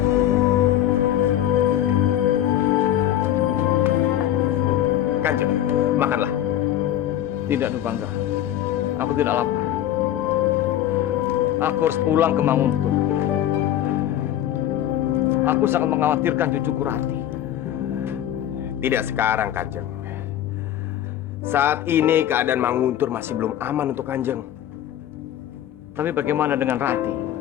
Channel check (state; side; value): quieter; right; 11.8 dB